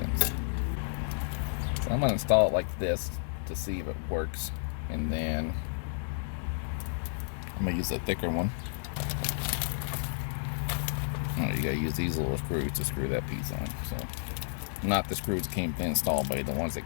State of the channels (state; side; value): silent; right; digital silence